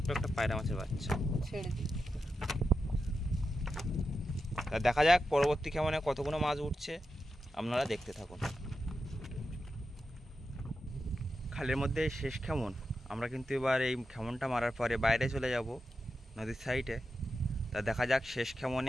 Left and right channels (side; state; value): both; normal; correlation 0.89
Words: একটা পায়রা মাছের বাচ্চা ছেড়ে দিই। তা দেখা যাক পরবর্তী কেমনে কতগুলো মাছ উঠছে, আপনারা দেখতে থাকুন। খালের মধ্যে শেষ কেমন, আমরা কিন্তু এবার এই খেমনটা মারার পরে বাইরে চলে যাব নদীর সাইডে। তা দেখা যাক শেষ